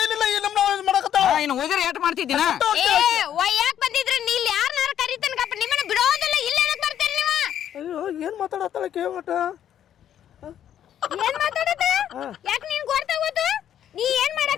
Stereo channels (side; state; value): right; quieter; 10.2 dB